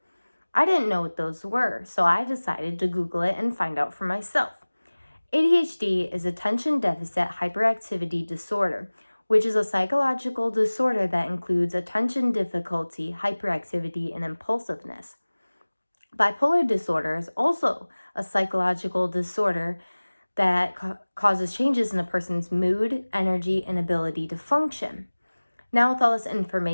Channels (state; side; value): inverted; both; correlation -1.00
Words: I didn't know what those were, so I decided to Google it and find out for myself. ADHD is attention deficit hyperactivity disorder, which is a psychological disorder that includes attention difficulty, hyperactivity, and impulsiveness. Bipolar disorder is also a psychological disorder that causes changes in a person's mood, energy, and ability to function. Now, with all this